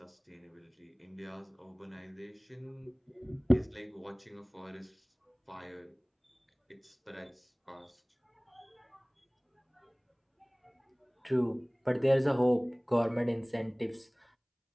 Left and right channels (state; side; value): identical; both; correlation 1.00